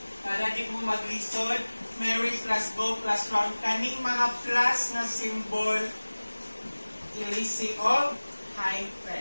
Para di mo maglisod, Mary plus go plus round. Kaning mga plus na symbol, ilisi og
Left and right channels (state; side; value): inverted; both; correlation -1.00